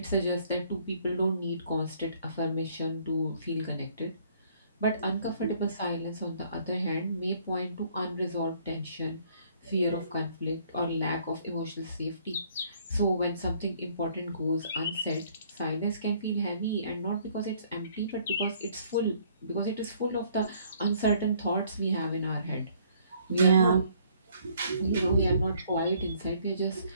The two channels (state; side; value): inverted; both; correlation -0.62